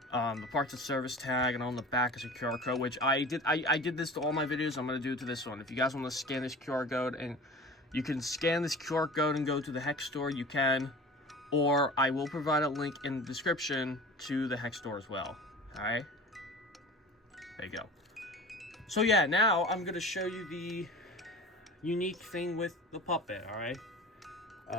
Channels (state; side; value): normal; both; correlation 0.38